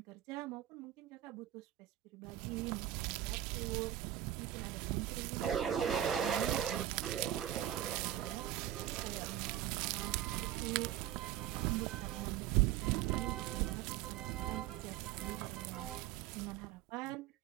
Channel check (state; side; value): quieter; left; 12.2 dB